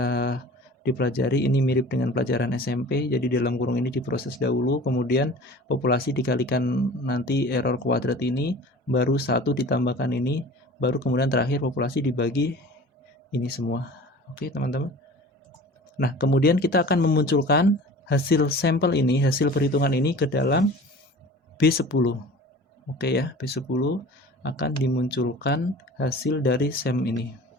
dipelajari. Ini mirip dengan pelajaran SMP. Jadi dalam kurung ini diproses dahulu, kemudian populasi dikalikan nanti error kuadrat ini, baru 1 ditambahkan ini, baru kemudian terakhir populasi dibagi ini semua. Oke, teman-teman. Nah, kemudian kita akan memunculkan hasil sampel ini, hasil perhitungan ini ke dalam B10. Oke ya, B10 akan dimunculkan hasil dari SEM ini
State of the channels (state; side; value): normal; both; correlation 0.41